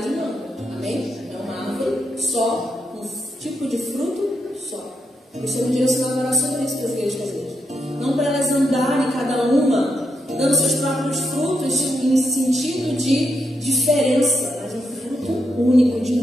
de manga. Amém? É uma árvore só, um tipo de fruto só. O Senhor me direcionou a orar sobre isso para as igrejas caseiras. Não para elas andarem cada uma, dando seus próprios frutos em sentido de diferença, mas um fruto único, de um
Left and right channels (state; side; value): normal; both; correlation 0.82